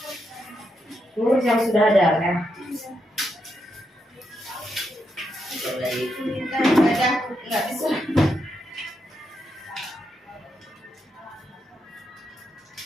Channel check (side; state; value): both; normal; correlation 0.82